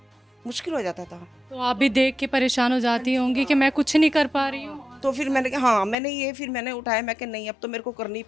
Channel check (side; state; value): right; drops out; at 6.0 s